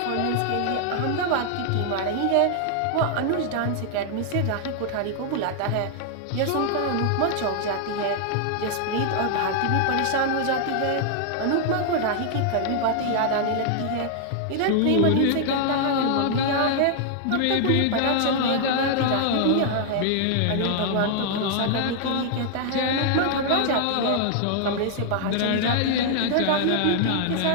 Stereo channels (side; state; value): both; different; correlation -0.01